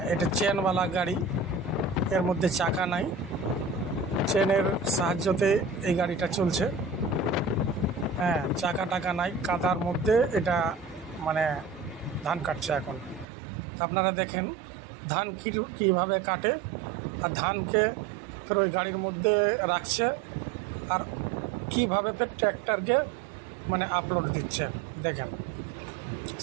এটা চেনওয়ালা গাড়ি, এর মধ্যে চাকা নাই, চেনের সাহায্যতে এই গাড়িটা চলছে। হ্যাঁ, চাকা টাকা নাই, কাদার মধ্যে এটা মানে ধান কাটছে এখন। আপনারা দেখেন ধান কীভাবে কাটে, আর ধানকে ফের ওই গাড়ির মধ্যে রাখছে, আর কীভাবে ফের ট্র্যাক্টরকে মানে আপলোড দিচ্ছে। দেখেন,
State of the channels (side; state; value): left; drops out; at 13.2 s